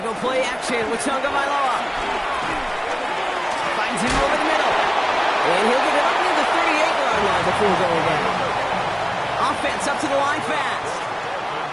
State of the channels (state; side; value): identical; both; correlation 1.00